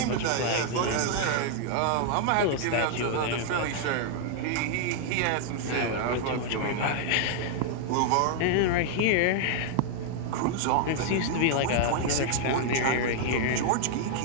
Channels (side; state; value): both; different; correlation 0.00